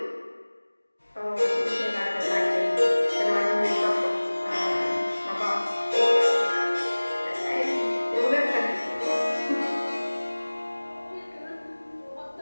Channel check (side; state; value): both; inverted; correlation -1.00